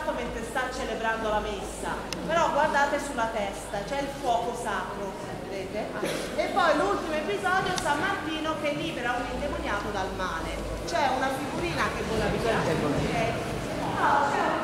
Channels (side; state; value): both; identical; correlation 1.00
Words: mentre sta celebrando la messa, però guardate sulla testa, c'è il fuoco sacro, vedete? E poi l'ultimo episodio, San Martino che libera un indemoniato dal male. C'è una figurina che vola via, ok? No, c'è un